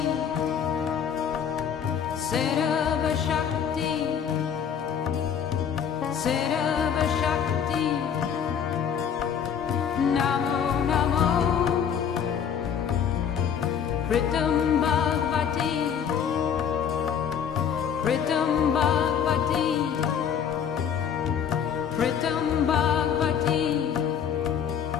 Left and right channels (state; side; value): quieter; right; 8.0 dB